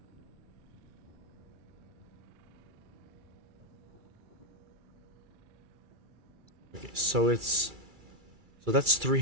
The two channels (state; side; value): late; left; 2.3 ms